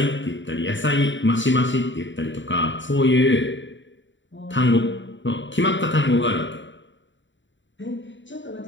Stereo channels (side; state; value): right; late; 0.54 ms